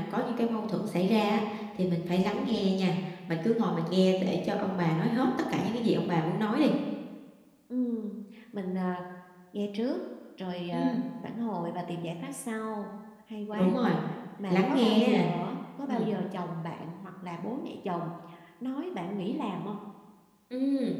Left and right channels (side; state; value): both; identical; correlation 1.00